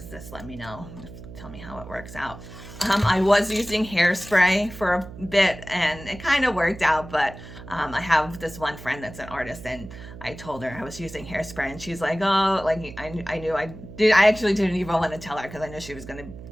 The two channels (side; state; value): right; noise; hum, 15 dB below the sound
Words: this, let me know. Tell me how it works out. I was using hairspray for a bit, and it kind of worked out, but I have this one friend that's an artist, and I told her I was using hairspray, and she's like, oh, like I actually didn't even want to tell her because I knew she was gonna